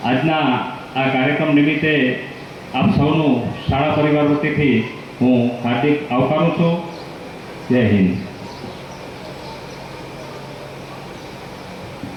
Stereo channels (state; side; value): identical; both; correlation 1.00